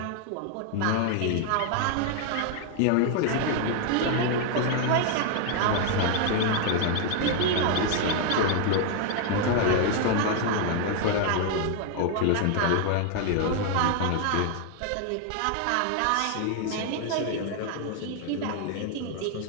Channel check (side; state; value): both; different; correlation 0.00